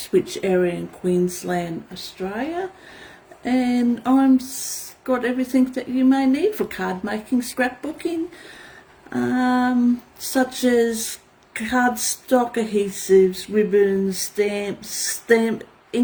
area in Queensland, Australia, and got everything that you may need for card making, scrapbooking, such as cardstock, adhesives, ribbons, stamps,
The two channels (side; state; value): both; identical; correlation 1.00